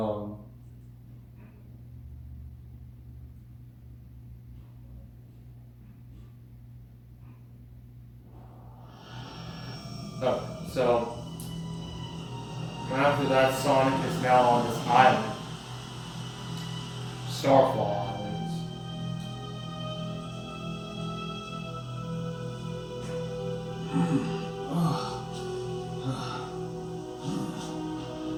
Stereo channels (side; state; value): both; identical; correlation 1.00